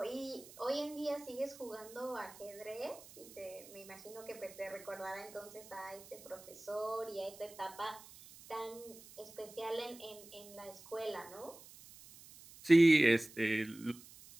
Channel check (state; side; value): noise; right; hiss, 19 dB below the sound